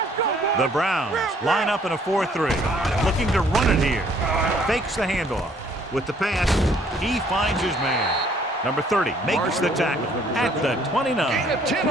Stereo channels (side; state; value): both; normal; correlation 0.62